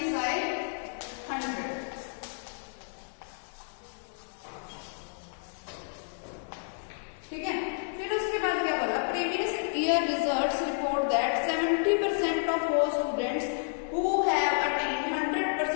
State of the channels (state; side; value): silent; right; digital silence